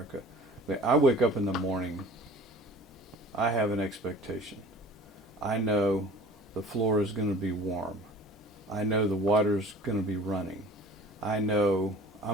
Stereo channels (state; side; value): normal; both; correlation 0.45